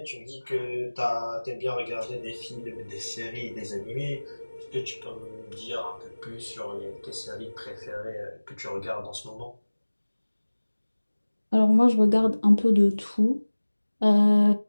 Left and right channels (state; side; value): inverted; both; correlation -1.00